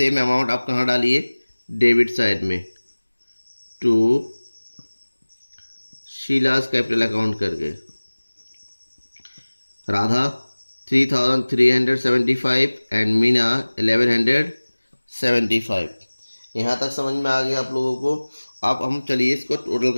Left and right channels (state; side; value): inverted; both; correlation -1.00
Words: amount आप कहाँ डालिए? डेबिट साइड में टू शीलास कैपिटल अकाउंट करके। राधा 3,375 एंड मीना 75। यहाँ तक समझ में आ गया आप लोगों को। अब हम चलिए इसको टोटल